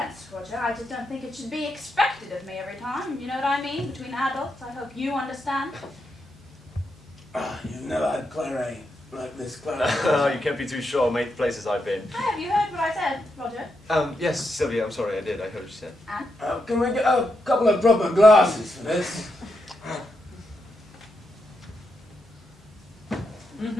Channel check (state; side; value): normal; both; correlation 0.83